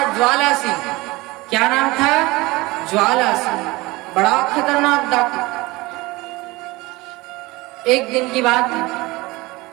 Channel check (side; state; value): left; quieter; 21.7 dB